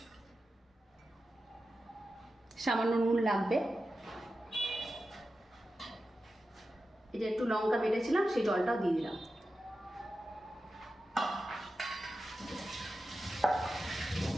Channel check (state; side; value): normal; both; correlation 0.92